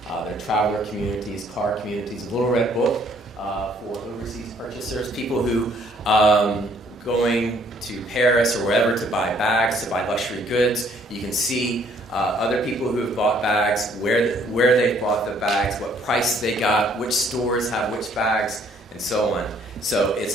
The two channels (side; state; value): both; normal; correlation 0.63